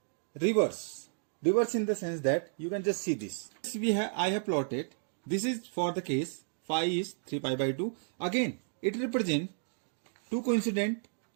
reverse in the sense that you can just see this. I have plotted. This is for the case phi is 3 pi by 2. Again, it represents two coincident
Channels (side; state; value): left; silent; digital silence